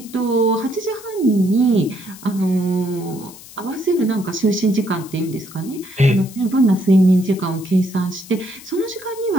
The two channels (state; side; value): noise; left; hiss, 18 dB below the sound